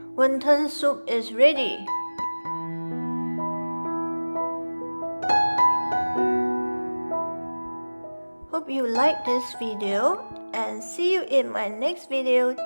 Wonton soup is ready. Hope you like this video and see you in my next video.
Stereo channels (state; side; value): inverted; both; correlation -1.00